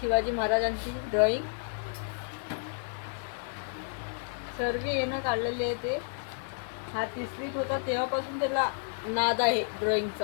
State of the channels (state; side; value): silent; right; 57 dB below the other